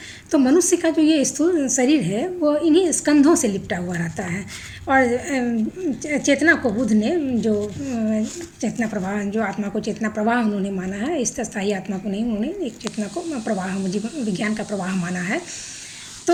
तो मनुष्य का जो ये स्थूल शरीर है वो इन्हीं स्कंधों से लिपटा हुआ रहता है। और चेतना को बुद्ध ने जो चेतना प्रवाह, जो आत्मा को चेतना प्रवाह उन्होंने माना है, इस स्थायी आत्मा को नहीं, उन्होंने एक चेतना को प्रवाह, विज्ञान का प्रवाह माना है।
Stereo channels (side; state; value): both; identical; correlation 1.00